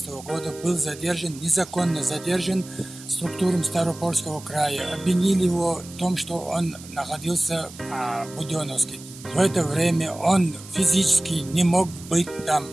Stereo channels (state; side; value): noise; right; hiss, 17 dB below the sound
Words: года был задержан, незаконно задержан структурами Ставропольского края. Обвинили его в том, что он находился в Буденновске. В это время он физически не мог быть там.